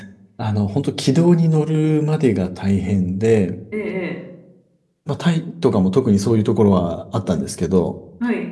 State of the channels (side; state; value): both; identical; correlation 1.00